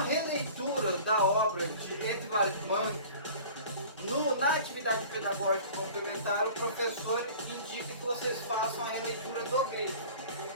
releitura da obra de Edvard Munch. Na atividade pedagógica complementar, o professor indica que vocês façam a releitura do grego.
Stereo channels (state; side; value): inverted; both; correlation -0.43